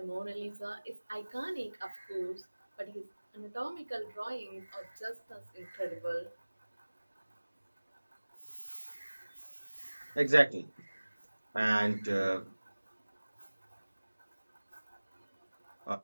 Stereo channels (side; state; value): both; inverted; correlation -1.00